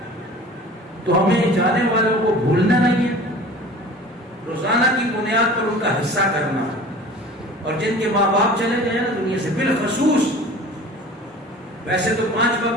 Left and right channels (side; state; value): both; normal; correlation 0.42